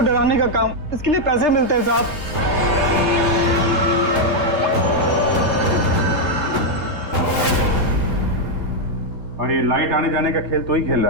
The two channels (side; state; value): left; late; 3.3 ms